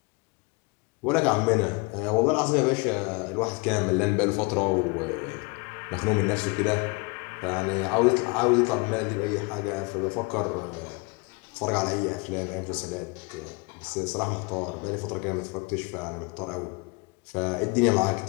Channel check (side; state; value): right; quieter; 28.7 dB